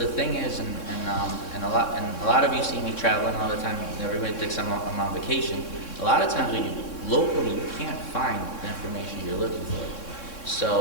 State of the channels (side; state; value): right; late; 3.6 ms